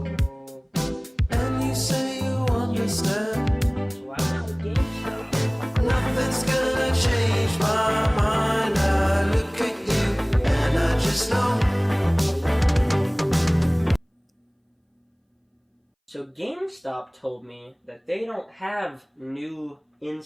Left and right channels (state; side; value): identical; both; correlation 1.00